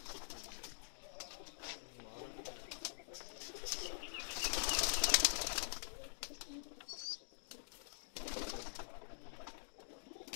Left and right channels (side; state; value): right; silent; digital silence